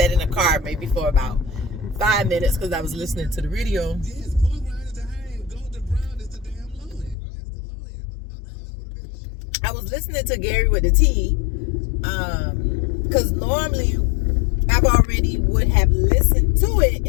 in the car maybe for about 5 minutes because I was listening to the radio. I was listening to Gary with the T, because normally I've already would have listened to it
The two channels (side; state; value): right; drops out; at 7.2 s